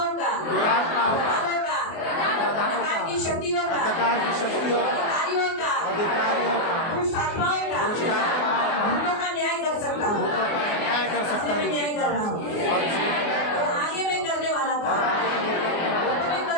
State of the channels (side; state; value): right; late; 24 ms